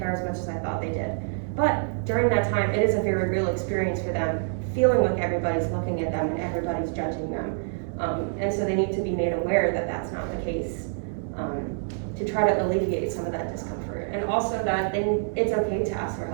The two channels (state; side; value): silent; left; 61 dB below the other